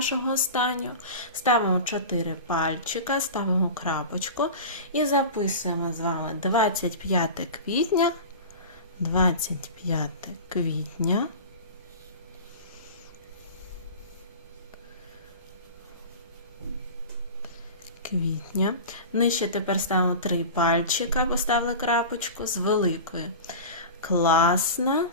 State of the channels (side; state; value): both; inverted; correlation -0.31